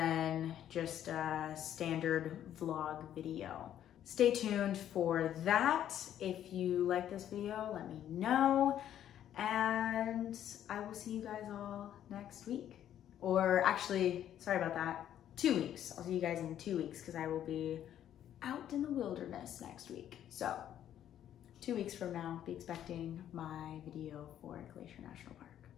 just a standard vlog video. Stay tuned for that. If you like this video, let me know. And I will see you guys all next week. Or actually, sorry about that, 2 weeks. I'll see you guys in 2 weeks because I will be out in the wilderness next week. So 2 weeks from now, be expecting my video for Glacier National Park.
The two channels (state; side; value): quieter; right; 10.8 dB